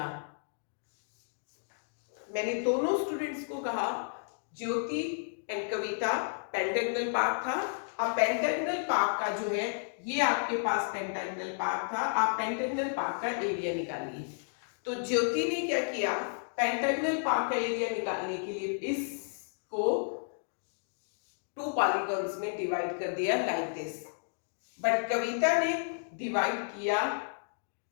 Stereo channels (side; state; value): right; silent; digital silence